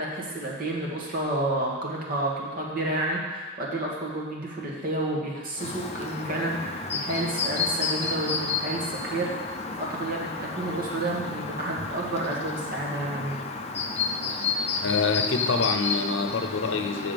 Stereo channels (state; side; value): normal; both; correlation 0.05